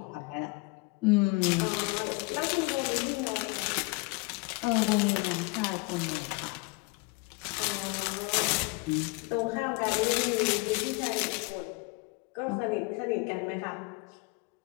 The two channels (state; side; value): quieter; right; 27.8 dB